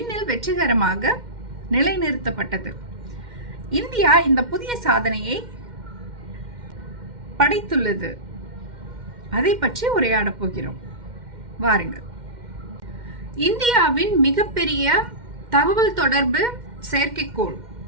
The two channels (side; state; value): left; late; 2.1 ms